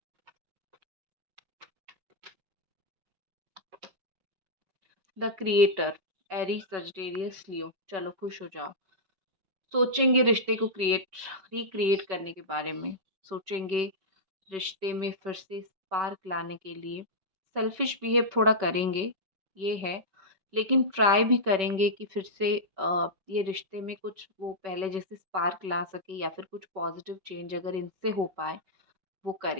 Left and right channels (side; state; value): left; late; 5.2 ms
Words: द क्रिएटर, एरीज, सजिटेरियस, लियो। चलो खुश हो जाओ। सोचेंगे रिश्ते को रिक्रिएट करने के बारे में, सोचेंगे रिश्ते में फिर से स्पार्क लाने के लिए। सेल्फिश बिहेव थोड़ा करेंगे, ये है, लेकिन ट्राई भी करेंगे कि फिर से ये रिश्ते में कुछ वो पहले जैसे स्पार्क ला सके, या फिर कुछ पॉजिटिव चेंज अगर इनसे हो पाए वो